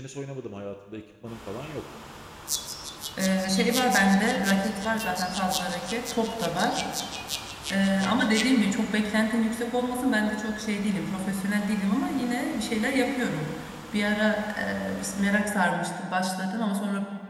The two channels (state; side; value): identical; both; correlation 1.00